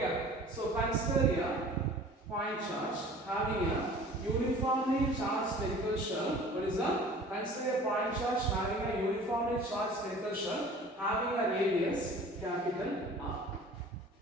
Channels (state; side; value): normal; both; correlation 0.45